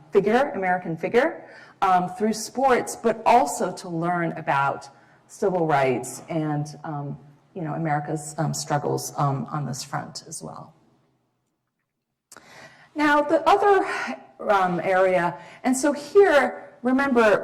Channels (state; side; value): identical; both; correlation 1.00